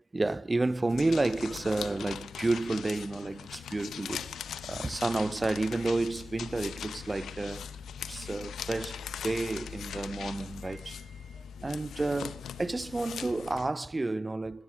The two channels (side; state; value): both; normal; correlation 0.95